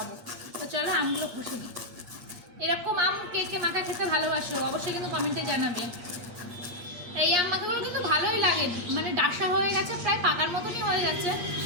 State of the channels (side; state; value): left; late; 8.4 ms